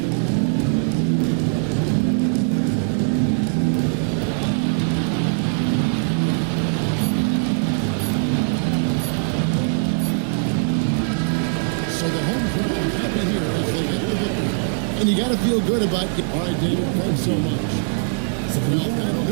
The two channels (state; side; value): silent; left; 65 dB below the other